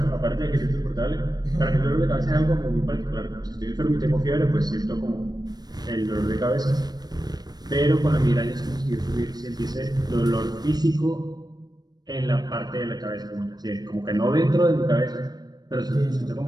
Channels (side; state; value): left; late; 0.19 ms